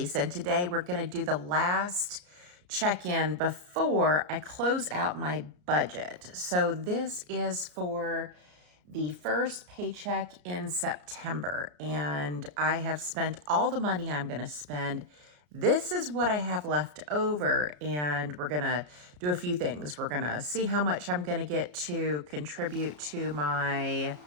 and today we're going to do the last check-in before I close out my budget. So this is for the first paycheck in September and I have spent all the money I'm going to spend. This is what I have left over and we're going to do a few things. We're going to see how much I'm going to get to contribute to my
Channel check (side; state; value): left; late; 34 ms